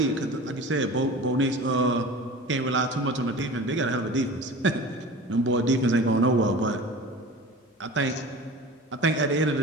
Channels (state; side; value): normal; both; correlation 0.37